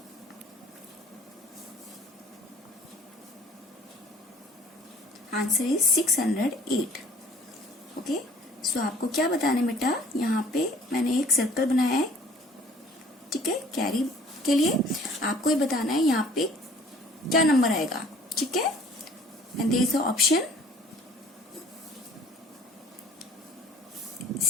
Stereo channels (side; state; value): both; normal; correlation 0.53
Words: answer is 608। Okay, so आपको क्या बताना है बेटा, यहाँ पे मैंने एक सर्कल बनाया है, ठीक है, कैरी के लिए आपको ये बताना है यहाँ पे क्या नंबर आएगा, ठीक है। And there is a option